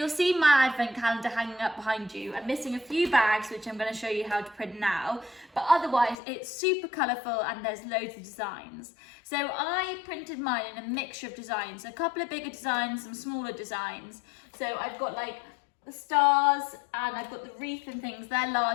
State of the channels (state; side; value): drops out; right; at 6.2 s